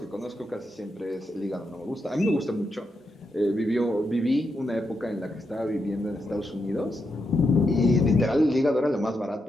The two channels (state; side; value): normal; both; correlation 0.84